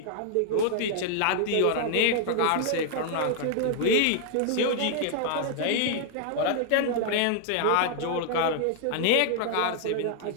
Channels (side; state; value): both; different; correlation -0.01